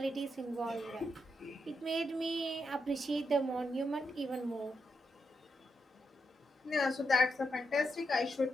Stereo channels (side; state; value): both; normal; correlation 0.84